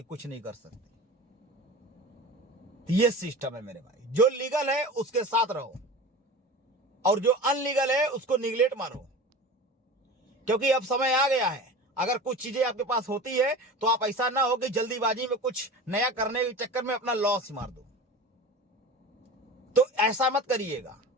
कुछ नहीं कर सकते। ये सिस्टम है मेरे भाई। जो लीगल है उसके साथ रहो और जो अनलीगल है उसको निगलेक्ट मारो, क्योंकि अब समय आ गया है। अगर कुछ चीजें आपके पास होती है तो आप ऐसा ना हो कि जल्दीबाजी में कुछ नया करने के चक्कर में अपना लॉस मार दो। तो ऐसा मत करिएगा।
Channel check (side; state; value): both; normal; correlation 0.34